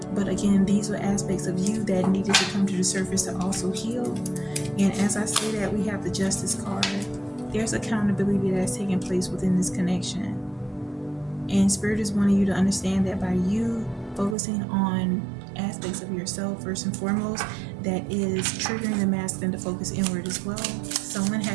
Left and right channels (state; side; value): drops out; left; at 14.4 s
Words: But again, these were aspects of you that needed to come to the surface to also heal. And as I say that, we have the Justice card. There's accountability that's taking place within this connection. And Spirit is wanting you to understand that by you focusing on aspects of yourself first and foremost, that is triggering the masculine to focus inward as well. Someone